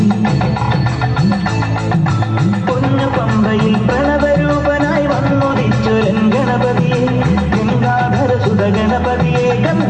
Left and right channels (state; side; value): identical; both; correlation 1.00